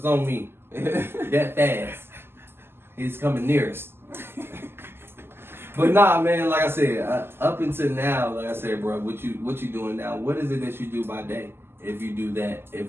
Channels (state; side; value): late; left; 0.11 ms